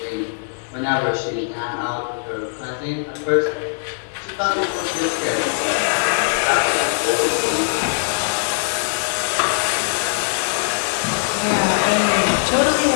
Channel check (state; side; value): silent; right; 65 dB below the other